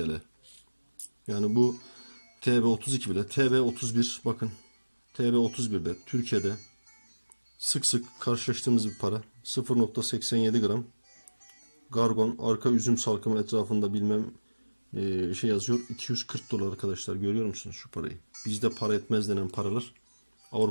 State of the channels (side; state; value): both; inverted; correlation -1.00